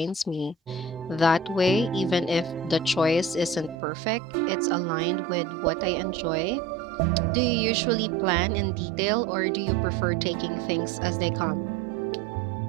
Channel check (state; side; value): drops out; left; at 3.8 s